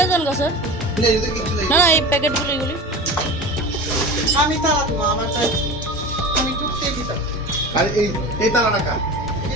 যান গা স্যার না যদি কিছু নেই না না এই প্যাকেটগুলো এগুলি আমি তালা দিব আমার চাই আমি ঢুকতে দিতাম আর এই তালাটা কার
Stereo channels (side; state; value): both; normal; correlation 0.32